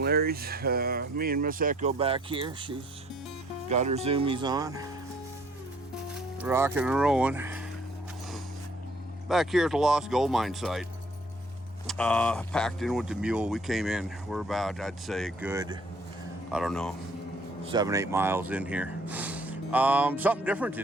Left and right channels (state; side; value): normal; both; correlation 0.60